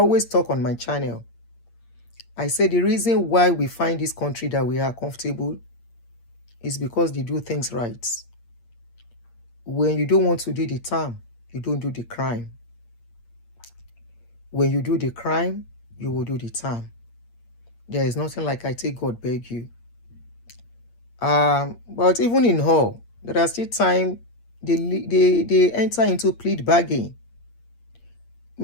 talk on my channel, I say the reason why we find this country that we are comfortable is because they do things right. When you don't want to do the time, you don't do the crime. When you do the crime, you will do the time. There is nothing like I take God beg you. But even in all, there are still time they enter into plea bargain.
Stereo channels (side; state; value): right; late; 8.6 ms